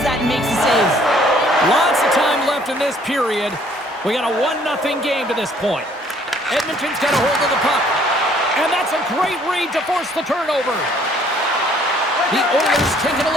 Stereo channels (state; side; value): normal; both; correlation 0.61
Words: that and makes the save. Lots of time left in this period. We got a 1-0 game to this point. Edmonton's got a hold of the puck. And that's a great read to force the turnover. The Oilers take it